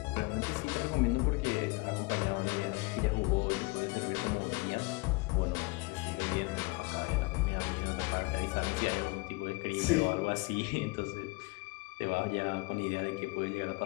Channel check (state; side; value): quieter; right; 26.2 dB